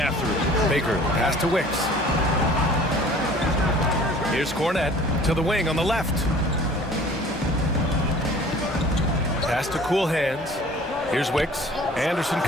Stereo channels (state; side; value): normal; both; correlation 0.48